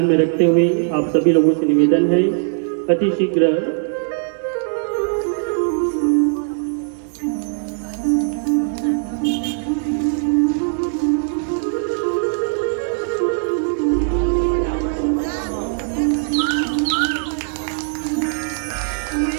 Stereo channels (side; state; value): left; silent; digital silence